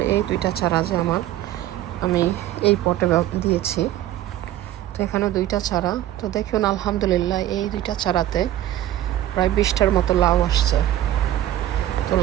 এই দুইটা চারা যে আমি এই পটে দিয়েছি, তো এখানে দুইটা চারা। তো দেখুন আলহামদুলিল্লাহ এই দুইটা চারাতে প্রায় 20টার মতো লাউ আসছে। তো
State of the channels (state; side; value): quieter; left; 13.3 dB